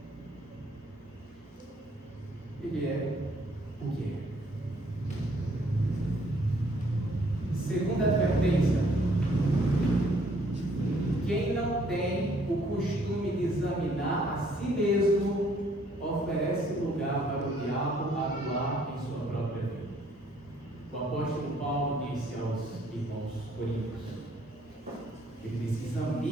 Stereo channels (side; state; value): both; normal; correlation 0.64